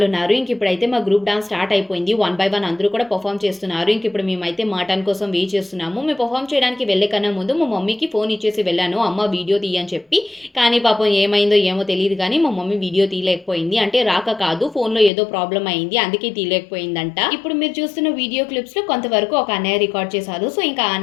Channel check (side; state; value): right; drops out; at 15.1 s